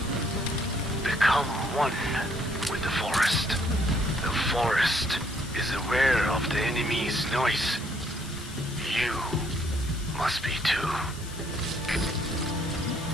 Become one with the forest. The forest is aware of the enemy's noise. You must be too.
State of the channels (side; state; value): left; noise; hiss, 15 dB below the sound